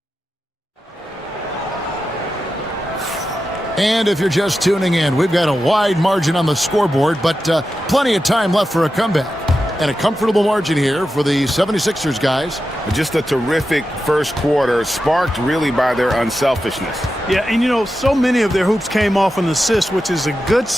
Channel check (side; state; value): both; normal; correlation 0.91